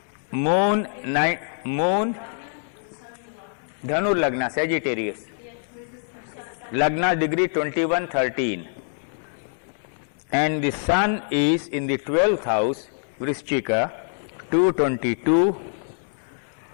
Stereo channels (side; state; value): right; silent; digital silence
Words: Moon, Dhanu Lagna, Sagittarius. Lagna degree 21, 13. And the sun is in the 12th house, Vrishchika, 222.